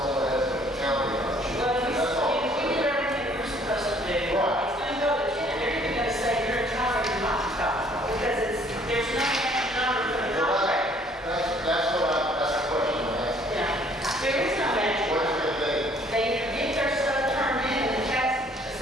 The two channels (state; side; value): normal; both; correlation 0.59